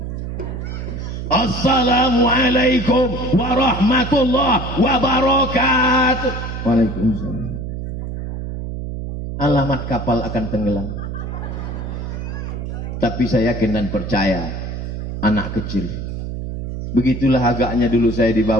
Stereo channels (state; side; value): noise; right; hum, 6 dB below the sound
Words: Assalamualaikum warahmatullahi wabarakatuh. Waalaikumsalam. Alamat kapal akan tenggelam. Tapi saya yakin dan percaya, anak kecil. Begitulah agaknya dulu saya